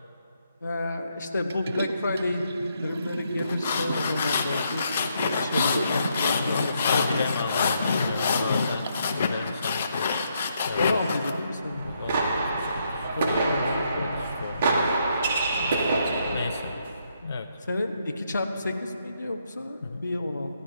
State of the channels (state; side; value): inverted; both; correlation -0.76